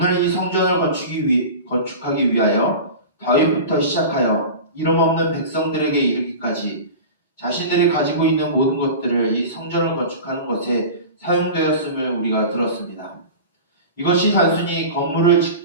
이 성전을 건축하기 위하여 다윗부터 시작하여 이름 없는 백성들에게 이르기까지 자신들이 가지고 있는 모든 것들을 이 성전을 건축하는 것에 사용되었음을 우리가 들었습니다. 이것이 단순히 건물을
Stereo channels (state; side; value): inverted; both; correlation -0.33